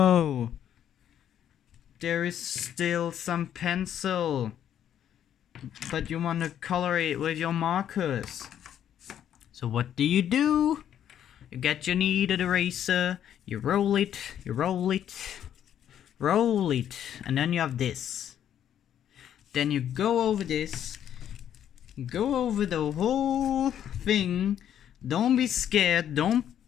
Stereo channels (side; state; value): right; quieter; 10.1 dB